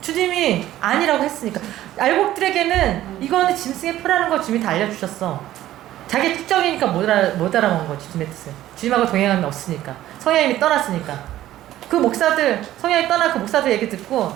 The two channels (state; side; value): quieter; left; 13.8 dB